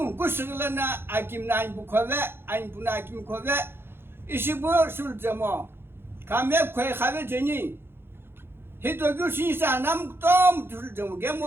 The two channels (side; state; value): left; late; 0.11 ms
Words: kusılana akim nan bu kove an buna akim kove. İşi bu sul cemo. Kame koy khave jeni. Hito gülsün sanam tom tüldüm